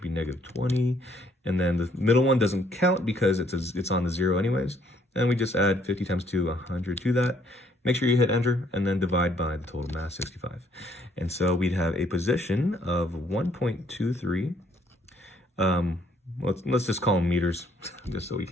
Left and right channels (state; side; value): normal; both; correlation 0.66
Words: be negative 20. And then the middle one doesn't count because it's on the 0 anyways. And we just add 50 times 2, 100 to that. Make sure you hit enter and then divide by the total mass, 65. And so we'd have a position of 1.23. Let's just call them meters, just so we